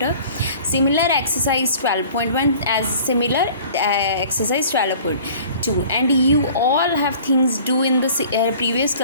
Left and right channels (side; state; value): both; inverted; correlation -0.48